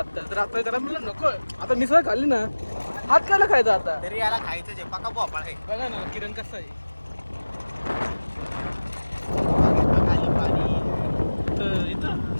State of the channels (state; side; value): inverted; both; correlation -1.00